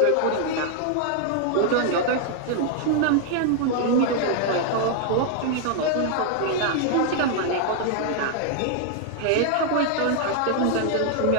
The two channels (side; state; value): both; different; correlation 0.00